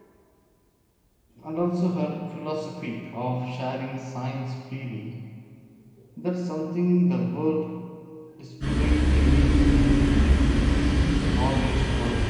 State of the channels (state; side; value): identical; both; correlation 1.00